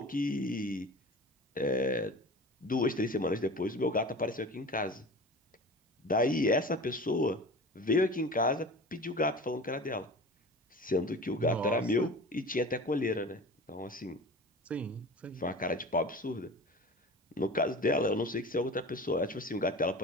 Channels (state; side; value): normal; both; correlation 0.37